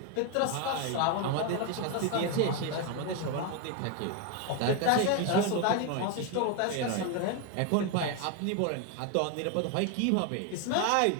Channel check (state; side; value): different; both; correlation 0.01